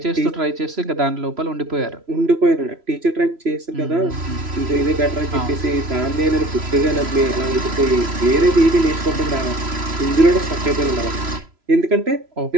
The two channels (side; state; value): left; late; 3.0 ms